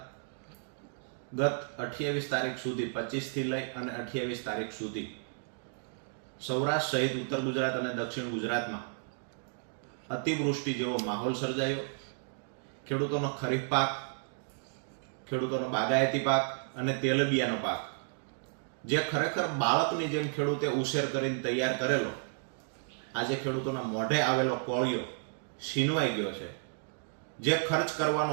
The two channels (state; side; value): silent; left; digital silence